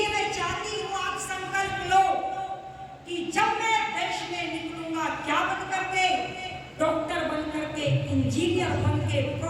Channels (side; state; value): both; identical; correlation 1.00